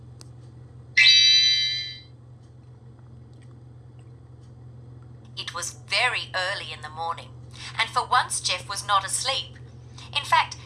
It was very early in the morning, and for once Jeff was not asleep. In fact,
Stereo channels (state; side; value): identical; both; correlation 1.00